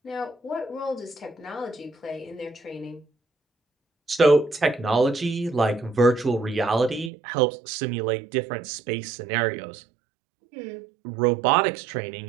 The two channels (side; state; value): left; drops out; at 7.1 s